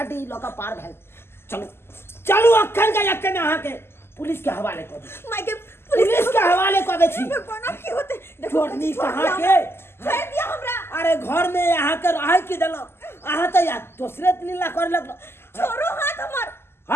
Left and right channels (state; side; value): late; right; 0.12 ms